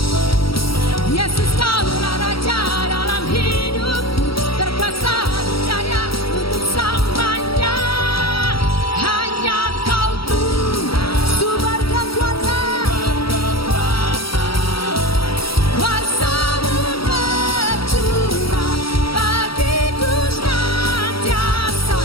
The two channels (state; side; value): late; right; 0.75 ms